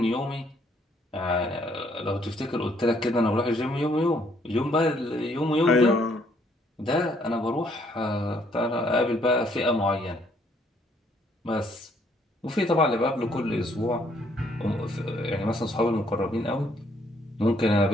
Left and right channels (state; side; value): normal; both; correlation 0.67